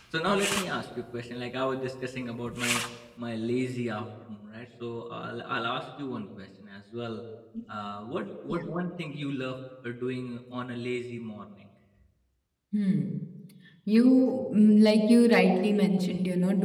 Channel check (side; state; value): both; identical; correlation 1.00